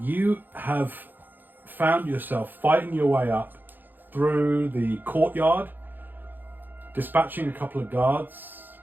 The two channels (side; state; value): left; late; 0.089 ms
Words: You have found yourself fighting your way up through the courtyard, dispatching a couple of guards,